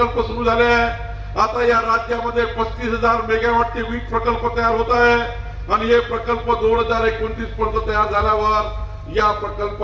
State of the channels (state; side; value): identical; both; correlation 1.00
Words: सुरू झाले आहे. आता या राज्यामध्ये 35,000 मेगावॉटचे वीज प्रकल्प तयार होत आहे आणि हे प्रकल्प 2029 पर्यंत तयार झाल्यावर या